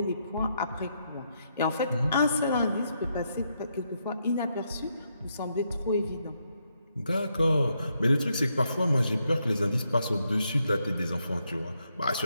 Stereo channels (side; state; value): both; inverted; correlation -0.79